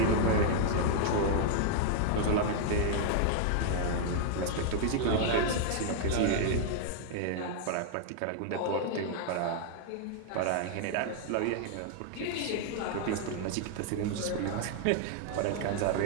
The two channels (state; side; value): different; both; correlation -0.01